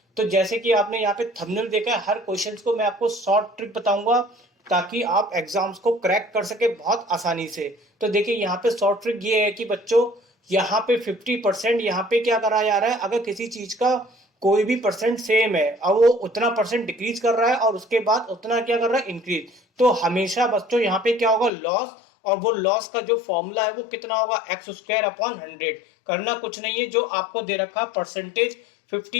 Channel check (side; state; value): right; drops out; at 21.5 s